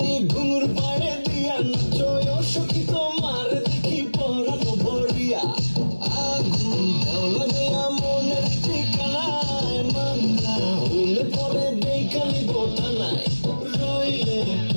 ঘুঙুর পায়ে দিয়া নাচয় সখী তোমার দেখি পরানো ভরিয়া আগুন দেও লাগাইয়া মনের ঠিকানায় মামলা হইলে পরে দেখানি বোটা নাই রইলে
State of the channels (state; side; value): inverted; both; correlation -1.00